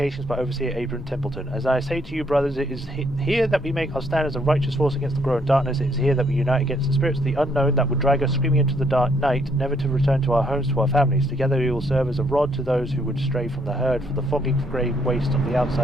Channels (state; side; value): normal; both; correlation 0.70